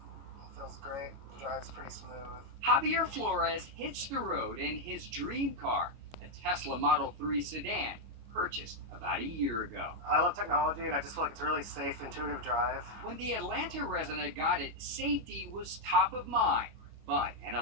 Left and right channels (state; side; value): late; left; 25 ms